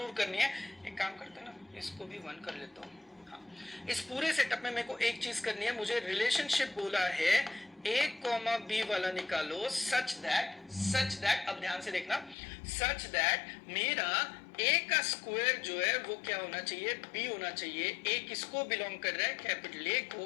करनी है, एक काम करते हैं ना, इसको भी 1 कर लेता हूँ। हाँ, इस पूरे सेटअप में मेरे को एक चीज करनी है, मुझे रिलेशनशिप बोला है ए कॉमा बी वाला निकालो सच दैट, अब ध्यान से देखना, सच दैट मेरा ए का स्क्वायर जो है वो क्या होना चाहिए, बी होना चाहिए। ए किसको बिलोंग कर रहा है, कैपिटल ए को,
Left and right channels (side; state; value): right; drops out; at 12.4 s